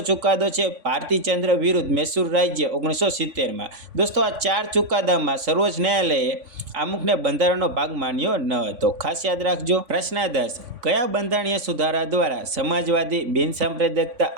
છે ભારતીચંદ્ર વિરુદ્ધ મૈસૂર રાજ્ય 1970માં। દોસ્તો આ 4 ચુકાદામાં સર્વોચ્ચ ન્યાયાલયે આમુખને બંધારણનો ભાગ માન્યો ન હતો, ખાસ યાદ રાખજો। પ્રશ્ન 10, કયા બંધારણીય સુધારા દ્વારા સમાજવાદી, બિનસાંપ્રદાયિકતા,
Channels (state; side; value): late; left; 3.5 ms